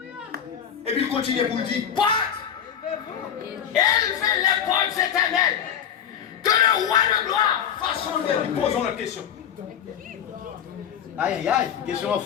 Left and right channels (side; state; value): right; quieter; 8.8 dB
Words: Et puis il continue pour dire, porte! Élevez les portes éternelles. Que le roi de gloire fasse son œuvre. Posons la question. Aïe, aïe, aïe, question